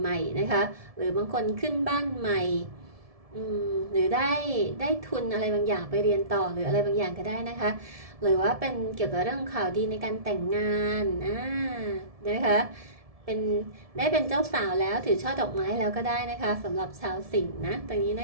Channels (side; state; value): left; late; 1.7 ms